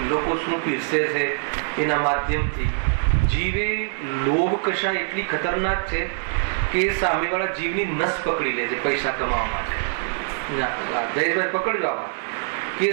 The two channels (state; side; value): silent; left; digital silence